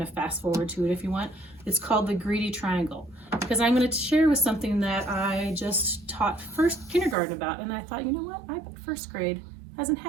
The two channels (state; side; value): drops out; left; at 7.2 s